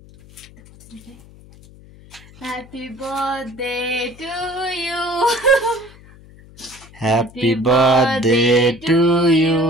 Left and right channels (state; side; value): noise; left; hum, 23 dB below the sound